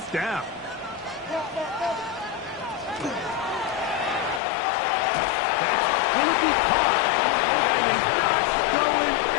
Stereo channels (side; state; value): right; drops out; at 4.4 s